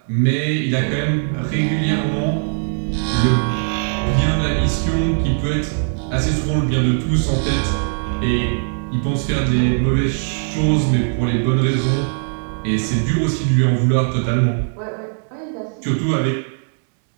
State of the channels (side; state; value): left; silent; digital silence